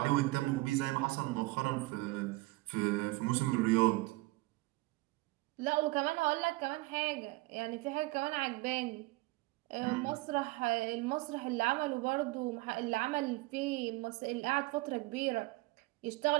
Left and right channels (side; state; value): left; quieter; 21.7 dB